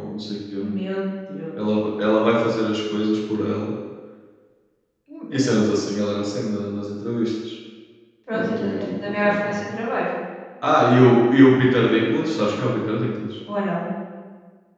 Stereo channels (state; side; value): identical; both; correlation 1.00